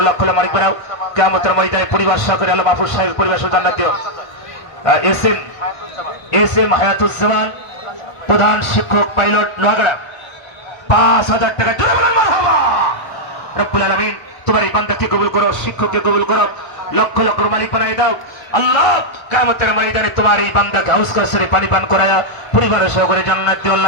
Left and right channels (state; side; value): late; right; 1.1 ms